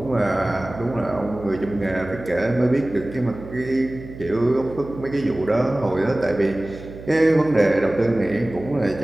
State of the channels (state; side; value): noise; right; hum, 14 dB below the sound